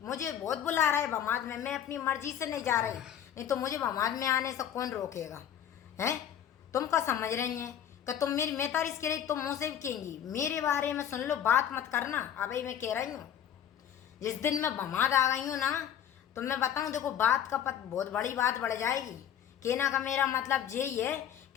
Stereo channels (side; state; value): right; quieter; 9.8 dB